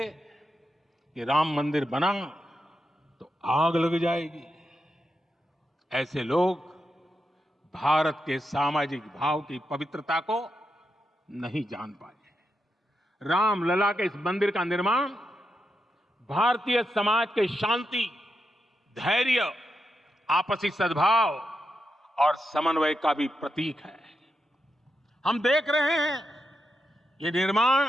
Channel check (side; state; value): both; normal; correlation 0.86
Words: कि राम मंदिर बना तो आग लग जाएगी। ऐसे लोग भारत के सामाजिक भाव की पवित्रता को नहीं जान पाए। रामलला के इस मंदिर का निर्माण भारतीय समाज के शांति, धैर्य, आपसी सद्भाव और समन्वय का भी प्रतीक है। हम देख रहे हैं ये निर्माण